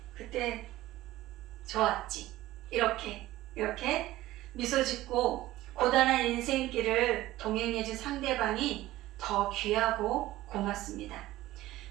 좋았지. 이렇게 미소 짓고 고단한 인생길을 동행해준 상대방이 더 귀하고 고맙습니다.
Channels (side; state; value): left; quieter; 16.3 dB